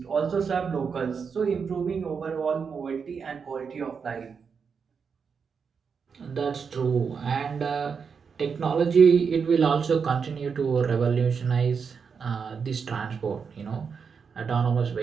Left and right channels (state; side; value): quieter; left; 6.0 dB